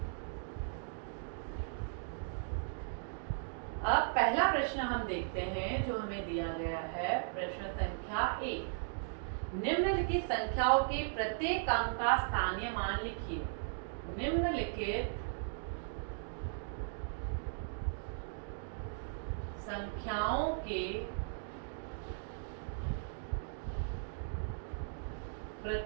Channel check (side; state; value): left; silent; digital silence